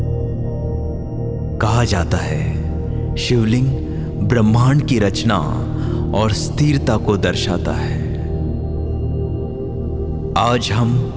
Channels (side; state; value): both; identical; correlation 1.00